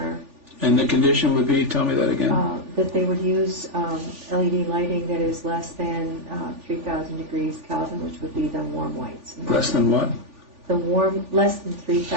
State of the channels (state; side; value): late; left; 3.4 ms